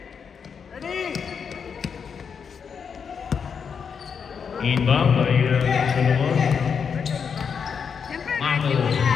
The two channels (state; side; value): quieter; right; 6.5 dB